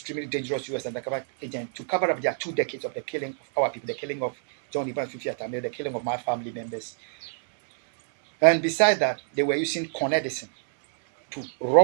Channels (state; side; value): silent; left; digital silence